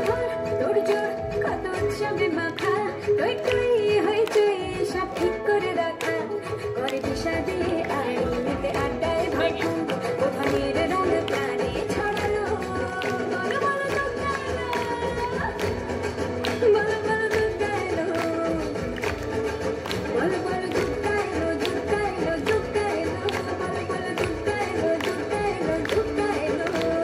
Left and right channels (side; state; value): both; identical; correlation 1.00